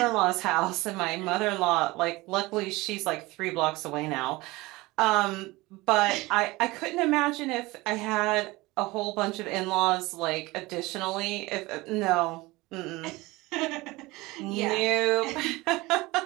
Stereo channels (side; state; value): left; quieter; 21.3 dB